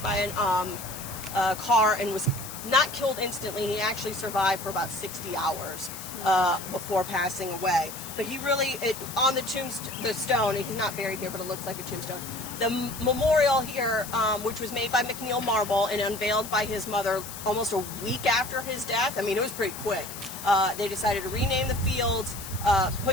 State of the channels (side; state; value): left; noise; hiss, 11 dB below the sound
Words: by a car and was not killed instantly. He actually survived for about 60 hours before passing away. But he really, on the stone, he's not buried here, but it looks like a tombstone. The memorial here, which was made by McNeil Marble and unveiled by his mother almost a week after his death. I mean, it was pretty quick. They decided to rename the fields,